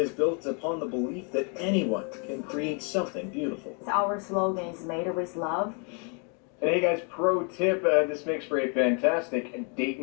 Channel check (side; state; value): right; quieter; 37.7 dB